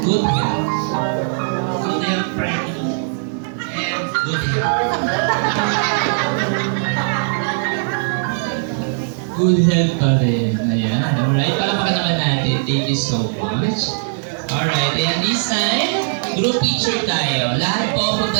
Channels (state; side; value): silent; left; digital silence